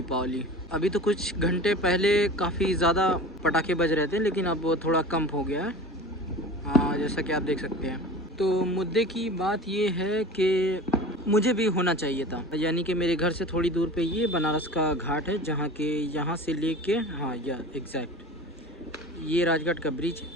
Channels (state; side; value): normal; both; correlation 0.36